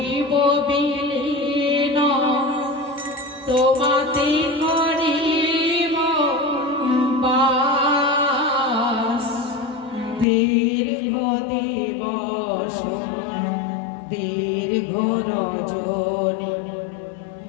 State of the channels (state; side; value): drops out; right; at 10.2 s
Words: বিলীন তোমাতে করিব বাস দীর্ঘ দিবস দীর্ঘ রজনী